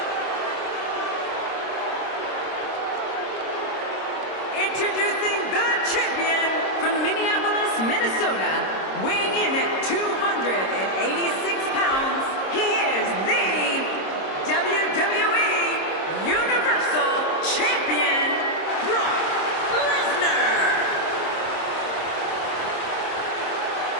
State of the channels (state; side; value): late; right; 26 ms